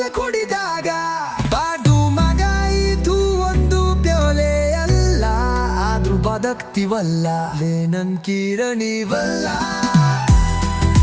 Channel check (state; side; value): identical; both; correlation 1.00